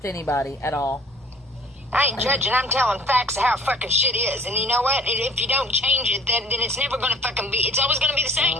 anybody at all. I ain't judging. I'm telling facts of how fucking shit is. And you know what? If you don't change it, then it's never going to fucking be... It's always going to be the same.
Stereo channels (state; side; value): normal; both; correlation 0.51